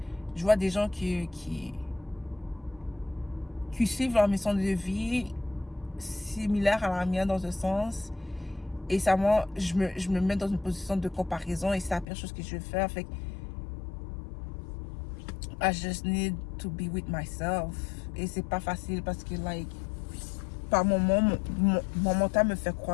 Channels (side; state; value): right; drops out; at 12.1 s